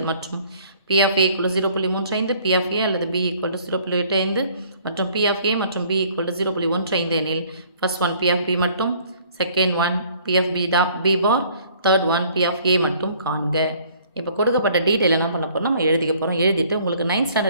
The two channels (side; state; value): both; inverted; correlation -0.57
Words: மற்றும் P of A equal 0.35 P of A அல்லது பி ஈக்குவல் 0.85 மற்றும் பி ஆஃப் ஏ மற்றும் பி ஈக்குவல் 0.15 எனில் first one P of B மட்டும், second one P of B bar, third one P of A மட்டும் காண்க. இப்போ கொடுக்கப்பட்ட டீட்டெயில் என்ன பண்ண போகிறோம், நம்ம எழுதிக்க போகிறோம். எழுதிட்டு உங்களுக்கு 9th